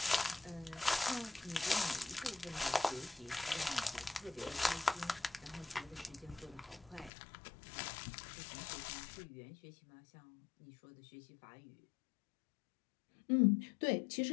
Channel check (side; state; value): right; drops out; at 7.1 s